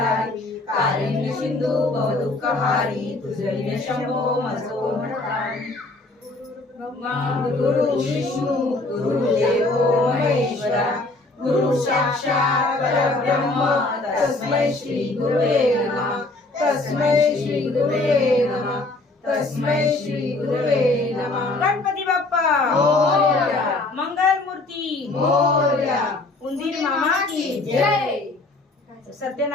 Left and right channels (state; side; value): quieter; right; 3.1 dB